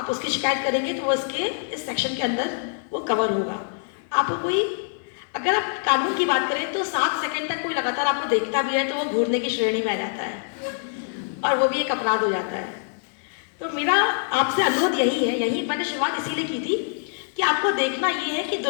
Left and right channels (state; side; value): silent; right; 62 dB below the other